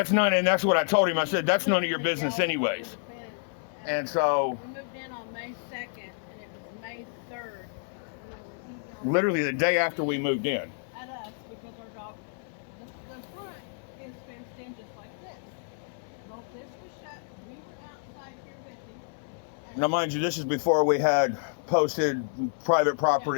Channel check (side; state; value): right; silent; 58 dB below the other